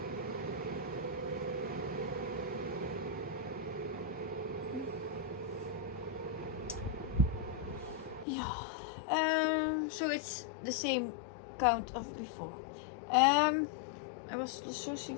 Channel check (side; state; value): right; drops out; at 8.2 s